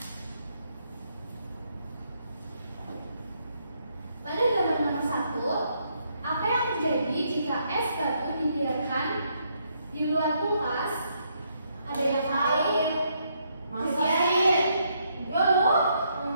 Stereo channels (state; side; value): inverted; both; correlation -0.74